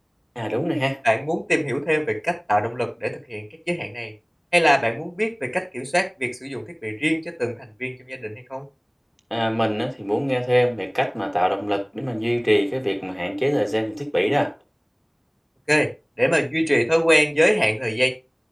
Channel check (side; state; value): both; identical; correlation 1.00